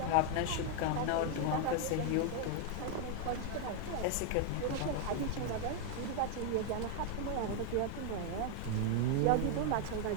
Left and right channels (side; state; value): both; different; correlation 0.00